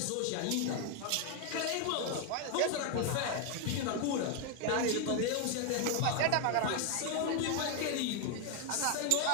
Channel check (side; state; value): both; different; correlation 0.01